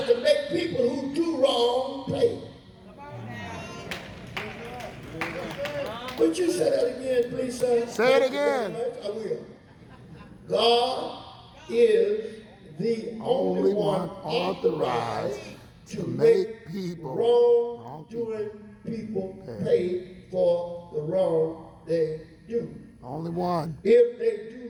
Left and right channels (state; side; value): identical; both; correlation 1.00